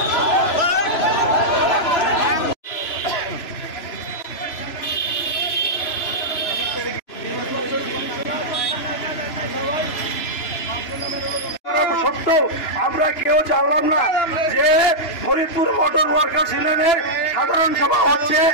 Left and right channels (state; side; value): late; right; 3.0 ms